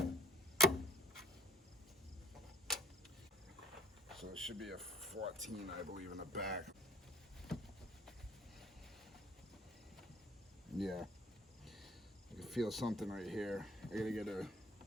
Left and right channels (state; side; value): normal; both; correlation 0.55